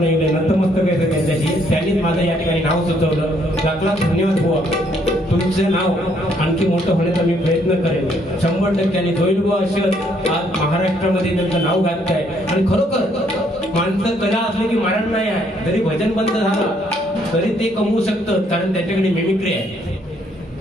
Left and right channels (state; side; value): normal; both; correlation 0.68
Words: गेले नतमस्तक आहे त्यांच्याशी त्यांनीच माझं या ठिकाणी नाव सुचवलं लाख धन्यवाद बुवा तुमचं नाव आणखी मोठं होण्याचा मी प्रयत्न करेन 100% होईल बुवा असं आज महाराष्ट्रामध्ये त्यांचं नाव घातलंय आणि खरोखर माणसं कला असले की मरण नाही आहे जरी भजन बंद झाला तरी ते कमवू शकतं कारण त्याच्याकडे मिमिक्री आहे